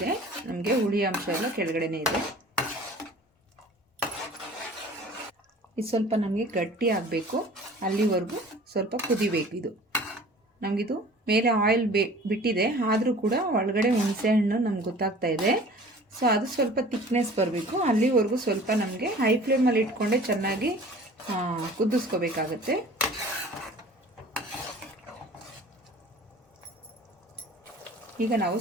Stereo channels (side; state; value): both; normal; correlation 0.46